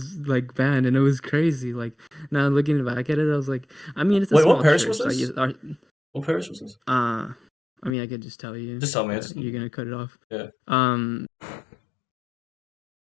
like band, and it was crazy. Like now looking back at it, I was like, I mean, it's a Wait, what small parish was church. Like this? What parish was this? uh, I mean, I could just tell you, Just tell me. but It's you're gonna cut it off. yeah. Um,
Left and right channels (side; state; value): right; drops out; at 8.0 s